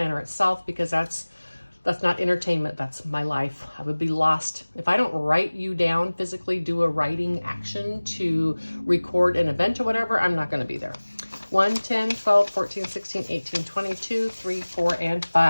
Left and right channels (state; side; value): inverted; both; correlation -1.00